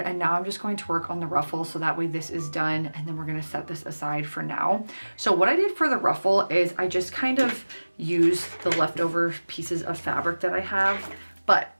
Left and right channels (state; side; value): inverted; both; correlation -1.00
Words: and now I'm just going to work on the ruffle so that way this is done and then we're gonna set this aside for now. So what I did for the ruffle is I just kind of used the leftover pieces of fabric that I have, but